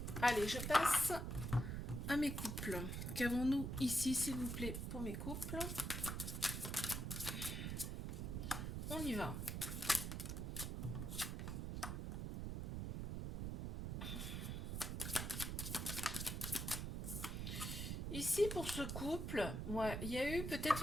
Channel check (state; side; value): noise; right; rumble, 3 dB below the sound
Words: Allez, je passe à mes couples. Qu'avons-nous ici, s'il vous plaît, pour mes couples? On y va. Ici, pour ce couple, ouais, il y a eu peut-être